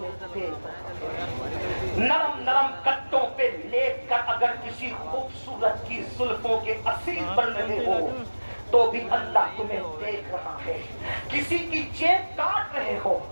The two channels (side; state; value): both; inverted; correlation -1.00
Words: دیکھ رہا ہے۔ نرم نرم کٹوں پہ لیٹ کر اگر کسی خوبصورت کی زلفوں کے اسیر بن رہے ہو تو بھی اللہ تمہیں دیکھ رہا ہے۔ کسی کی جیب کاٹ رہے ہو